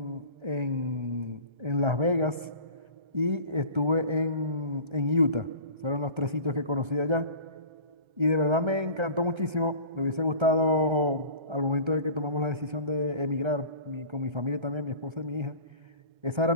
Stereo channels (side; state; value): left; late; 1.3 ms